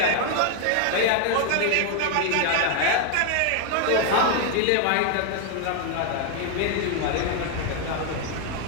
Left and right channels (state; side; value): different; both; correlation 0.00